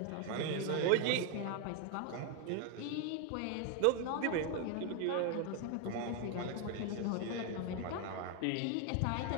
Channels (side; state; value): both; different; correlation 0.01